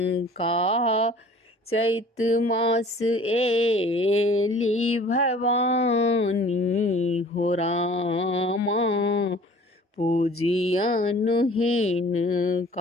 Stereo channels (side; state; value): both; normal; correlation 0.49